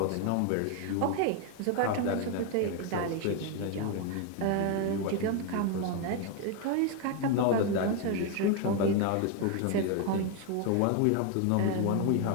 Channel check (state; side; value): different; both; correlation 0.01